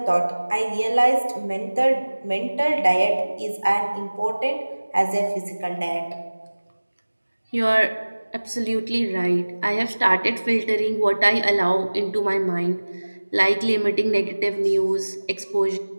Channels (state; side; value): inverted; both; correlation -1.00